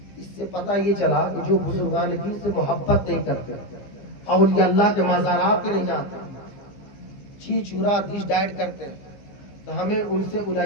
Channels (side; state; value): right; late; 15 ms